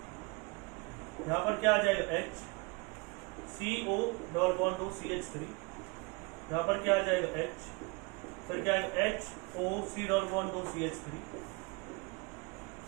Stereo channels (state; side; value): quieter; left; 28.7 dB